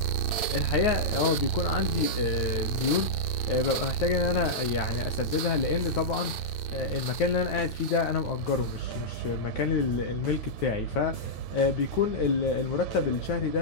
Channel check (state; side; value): late; right; 8.8 ms